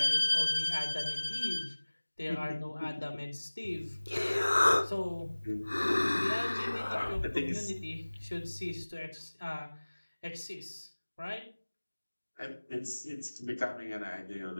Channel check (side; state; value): both; inverted; correlation -1.00